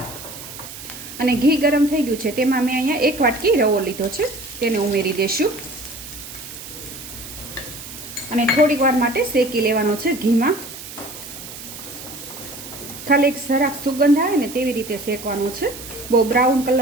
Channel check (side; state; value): right; noise; hiss, 13 dB below the sound